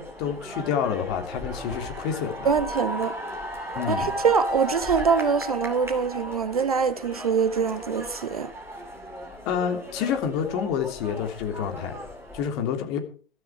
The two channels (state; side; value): normal; both; correlation 0.30